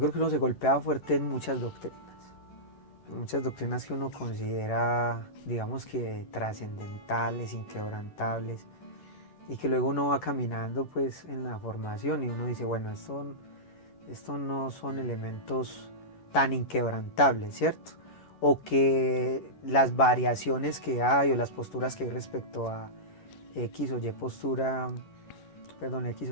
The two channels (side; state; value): right; late; 11 ms